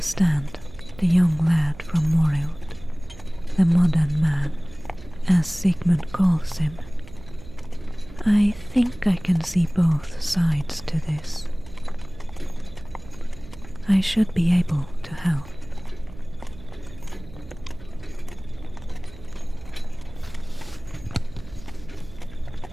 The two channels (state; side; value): noise; right; hum, 18 dB below the sound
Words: the young lad from Morild, the modern man, as Sigmund calls him. I think I can see both sides to this. I should be able to help.